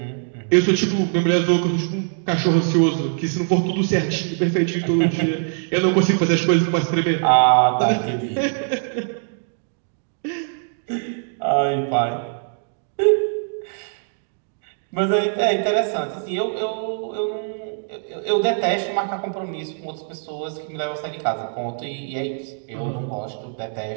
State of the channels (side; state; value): left; silent; digital silence